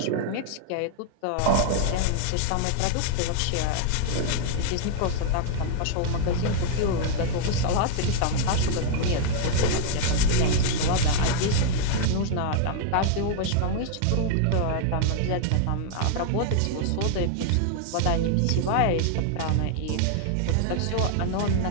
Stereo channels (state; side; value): different; both; correlation -0.01